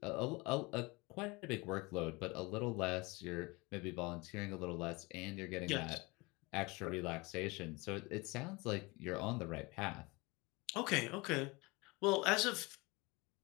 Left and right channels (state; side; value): quieter; right; 25.1 dB